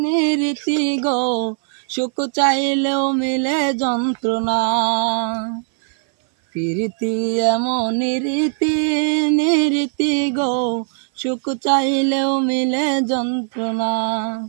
নিরীতি গো, সুখ চাইলেও মিলে যন্ত্রণা। পীরিতি এমন নিরীতি গো, সুখ চাইলেও মিলে যন্ত্রণা।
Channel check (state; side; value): silent; left; 60 dB below the other